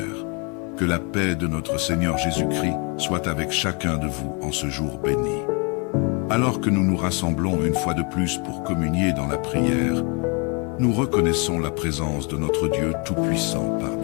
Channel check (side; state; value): right; quieter; 32.7 dB